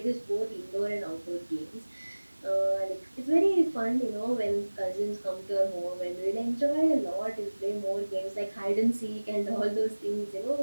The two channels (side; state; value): both; inverted; correlation -1.00